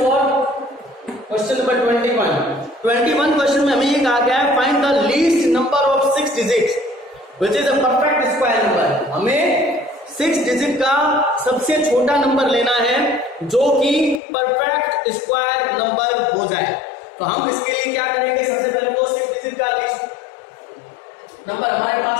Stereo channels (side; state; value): right; drops out; at 14.2 s